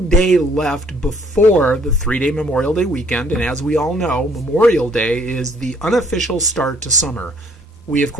day left before the 3-day Memorial Day weekend. And as we all know, Memorial Day is the unofficial start to summer. We, of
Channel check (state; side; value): normal; both; correlation 0.62